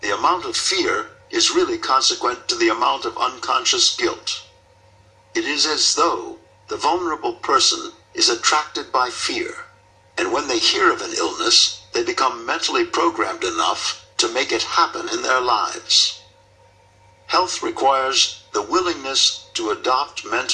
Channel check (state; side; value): identical; both; correlation 1.00